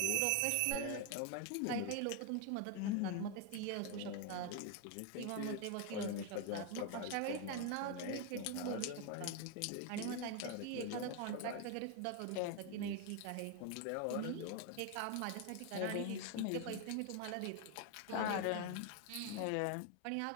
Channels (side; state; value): both; different; correlation 0.01